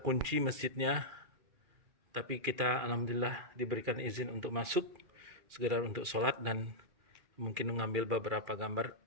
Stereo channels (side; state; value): left; late; 2.4 ms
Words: masjidnya, tapi kita alhamdulillah diberikan izin untuk masuk, sekedar untuk sholat dan mungkin mengambil beberapa gambar.